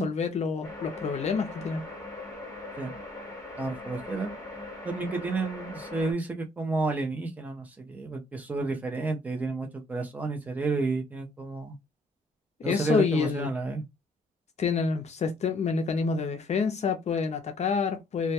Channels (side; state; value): both; normal; correlation 0.64